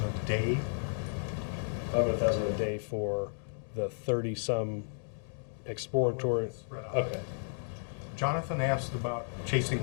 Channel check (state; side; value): silent; right; digital silence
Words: day. $500,000 a day for the 30-some exploratory. Okay. Jonathan asked about chasing